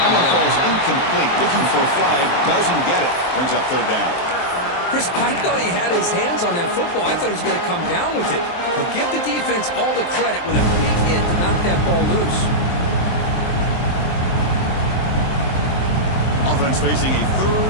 one falls incomplete. Looking for a flag. Doesn't get it. Brings up 3rd down. Chris, I thought he had his hands on that football. I thought he was going to come down with it. But give the defense all the credit with a big hit to knock that ball loose. Offense facing a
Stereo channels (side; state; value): right; late; 23 ms